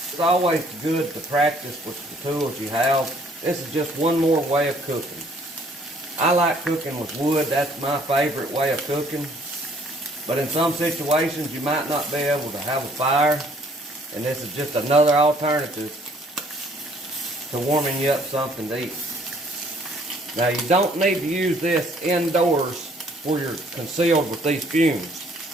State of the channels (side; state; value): both; normal; correlation 0.61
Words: It's always good to practice with the tools you have. This is just one more way of cooking. I like cooking with wood. That's my favorite way of cooking. But in some situations, you might not be able to have a fire. And this is just another alternative to warming you up something to eat. Now, you don't need to use this indoors where you're concealed with these fumes.